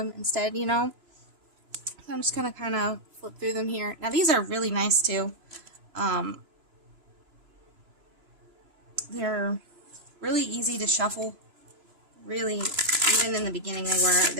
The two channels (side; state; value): left; late; 3.0 ms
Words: instead, you know. So I'm just gonna kind of flip through them here. Now these are really nice too. They're really easy to shuffle. Really, even in the beginning